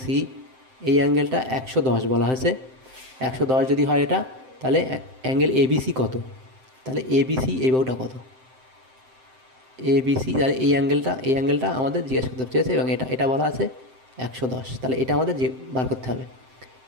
সি এই অ্যাঙ্গেলটা 110 বলা হয়েছে। 110 যদি হয় এটা, তাহলে অ্যাঙ্গেল এবিসি কত? তাহলে এবিসি এই বাহুটা কত? এবিসি, তাহলে এই অ্যাঙ্গেলটা আমাদের জিজ্ঞেস করতে চেয়েছে এবং এটা বলা আছে 110, তাহলে এটা আমাদের বার করতে হবে।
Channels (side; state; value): left; late; 7.7 ms